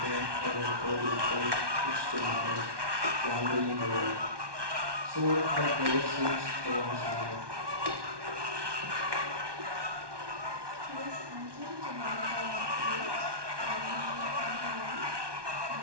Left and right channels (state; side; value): late; left; 1.2 ms